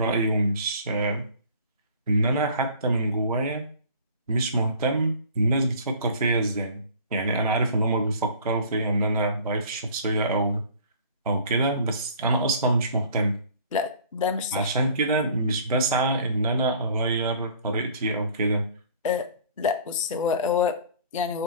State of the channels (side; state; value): both; inverted; correlation -0.49